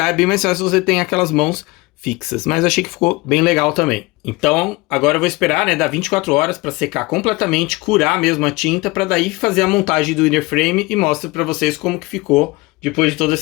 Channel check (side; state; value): right; quieter; 22.8 dB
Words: é bem mais fácil se você tem aquelas mãos fixas, mas achei que ficou bem legal também. Então, agora eu vou esperar, né, dar 24 horas para secar completamente, curar mesmo a tinta, para daí fazer a montagem do inner frame e mostro para vocês como que ficou depois de todo